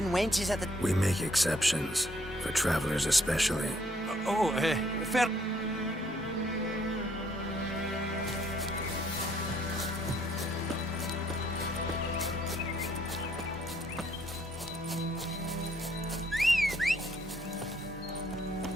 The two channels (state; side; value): normal; both; correlation 0.67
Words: wenches at the... We make exceptions. For travelers especially. Fair...